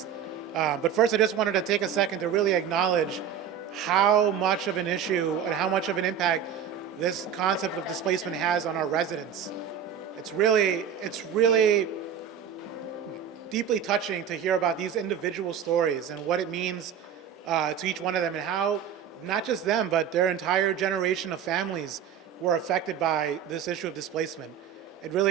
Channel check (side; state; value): left; quieter; 8.3 dB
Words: But first, I just wanted to take a second to really acknowledge how much of an issue and how much of an impact this concept of displacement has on our residents. It's really deeply touching to hear about these individual stories and what it means to each one of them, and how not just them, but their entire generation of families were affected by this issue of displacement. It